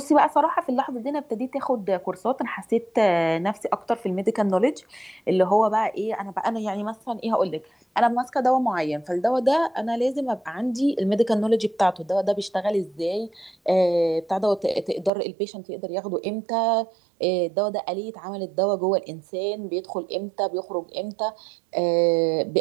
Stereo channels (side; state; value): left; drops out; at 15.1 s